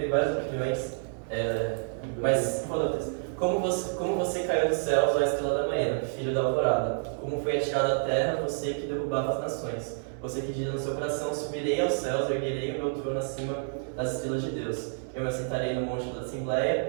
várias opiniões, mas qual é o texto? Como você caiu dos céus, ó estrela da manhã, filho da alvorada. Como foi atirado à terra, você que derrubava as nações. Você que diz no seu coração, subirei aos céus, erguerei o meu trono acima das estrelas de Deus. Eu me assentarei no monte da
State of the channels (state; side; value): silent; left; 58 dB below the other